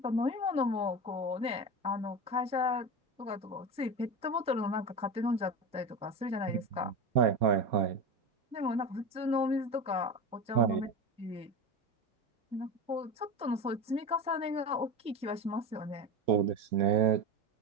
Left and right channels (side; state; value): both; normal; correlation 0.24